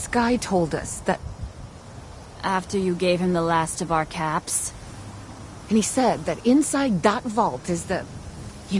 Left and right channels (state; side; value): identical; both; correlation 1.00